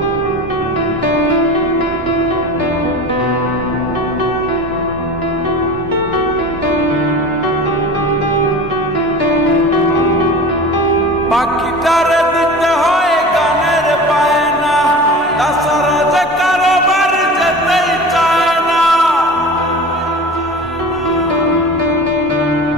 পাখিটারে দিতে হয় গানের বায়না, তাছাড়া যে কারোবার যেতেই চায় না।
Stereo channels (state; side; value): normal; both; correlation 0.35